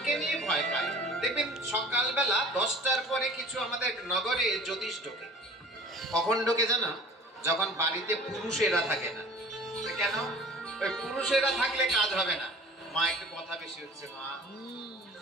নিয়ে ভয় পায়। দেখবেন সকালবেলা 10টার পরে কিছু আমাদের নগরে জ্যোতিষ ঢোকে। কখন ঢোকে জানো? যখন বাড়িতে পুরুষেরা থাকে না। কেন? ওই পুরুষেরা থাকলে কাজ হবে না। মা একটু কথা বেশি হচ্ছে মা।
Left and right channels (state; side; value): normal; both; correlation 0.45